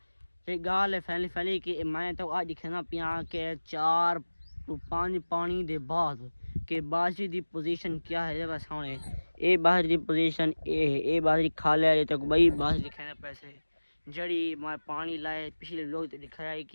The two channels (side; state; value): both; inverted; correlation -1.00